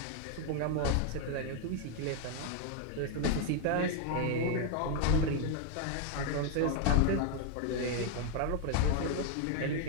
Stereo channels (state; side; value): different; both; correlation 0.01